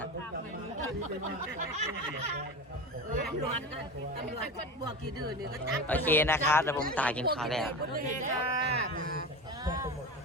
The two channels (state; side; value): normal; both; correlation 0.27